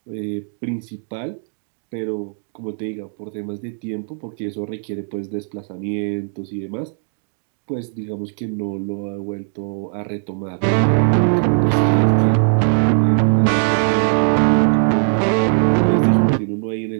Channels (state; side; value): silent; left; 63 dB below the other